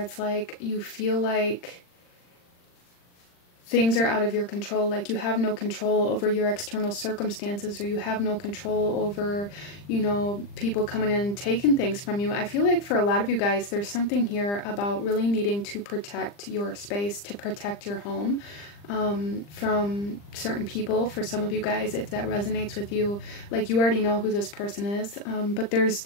like you feel like things are out of your control, like you have no control over your external circumstances, or you have no control over, you know, people coming in and taking things from you. I feel like for a lot of you guys, there's something here about really needing to protect your space, to protect your home from certain people. For some of you guys, if that resonates with you, like you already know who this person is, but there's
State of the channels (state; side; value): late; right; 40 ms